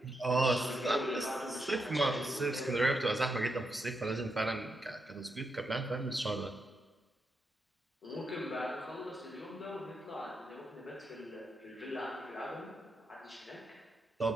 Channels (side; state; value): both; normal; correlation 0.83